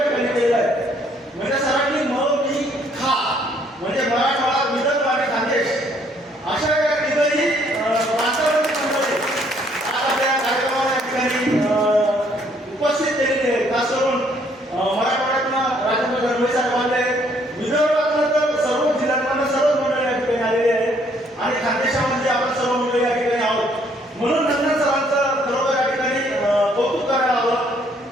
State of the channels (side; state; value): both; normal; correlation 0.65